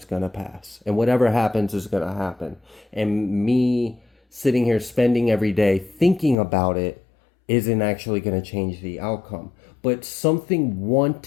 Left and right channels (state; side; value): drops out; right; at 6.4 s